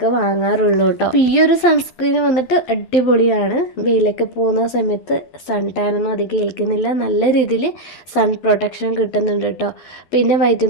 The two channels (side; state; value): right; late; 11 ms